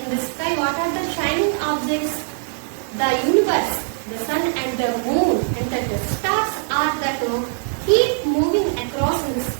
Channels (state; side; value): silent; left; digital silence